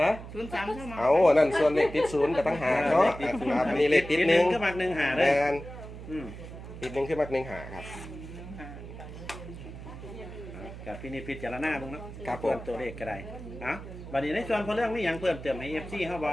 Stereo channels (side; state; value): right; noise; hum, 12 dB below the sound